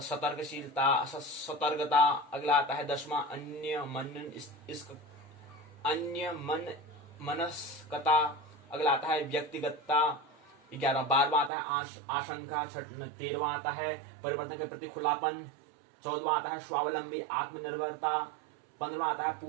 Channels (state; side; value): drops out; left; at 11.5 s